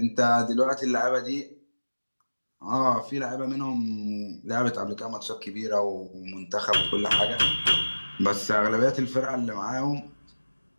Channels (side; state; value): both; inverted; correlation -1.00